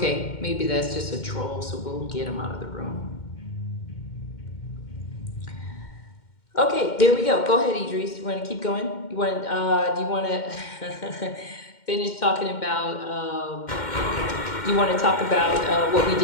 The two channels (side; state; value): right; late; 2.1 ms